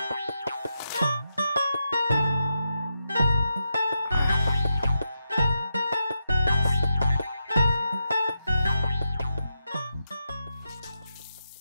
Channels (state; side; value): inverted; both; correlation -0.86